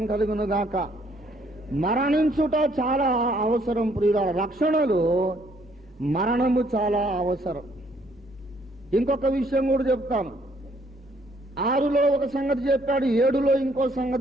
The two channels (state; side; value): normal; both; correlation 0.66